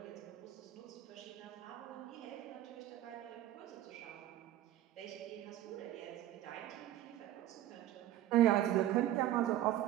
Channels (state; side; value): quieter; left; 13.3 dB